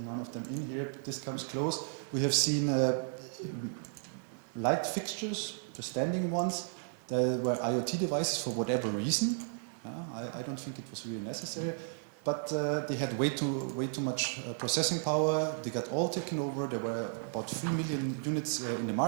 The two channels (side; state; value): left; silent; digital silence